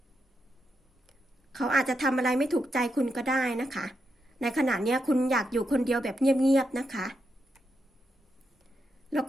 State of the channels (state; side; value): normal; both; correlation 0.84